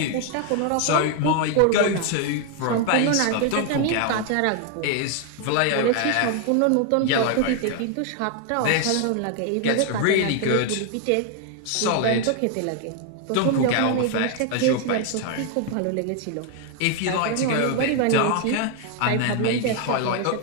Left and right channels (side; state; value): both; different; correlation 0.01